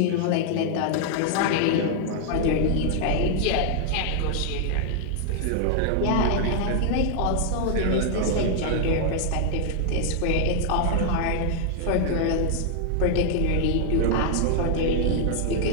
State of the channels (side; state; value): both; different; correlation 0.00